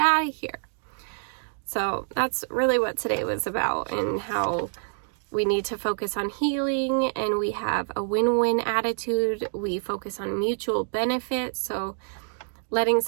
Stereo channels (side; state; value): left; silent; digital silence